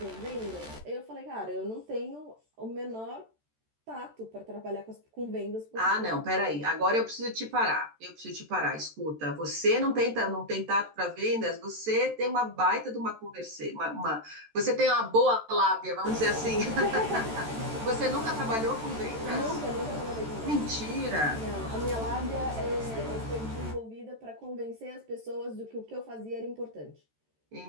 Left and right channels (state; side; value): late; left; 13 ms